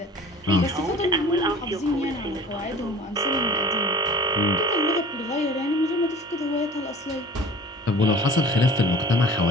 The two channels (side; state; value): both; normal; correlation 0.44